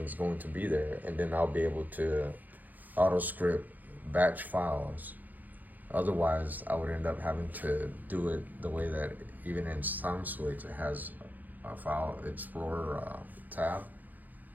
is going to be there, and then I'll be able to auto script batch files. Otherwise, I would end up having to do it the way that even in SoundSwitch it has a file explorer tab,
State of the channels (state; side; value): late; left; 0.083 ms